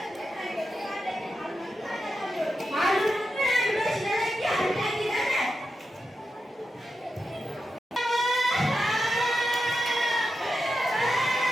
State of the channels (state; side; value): normal; both; correlation 0.89